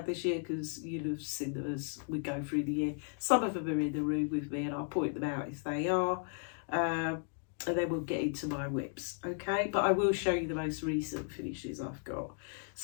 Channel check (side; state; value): right; silent; 54 dB below the other